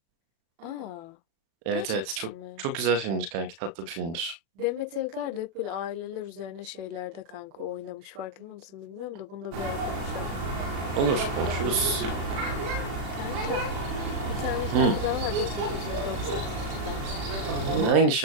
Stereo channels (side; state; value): left; late; 36 ms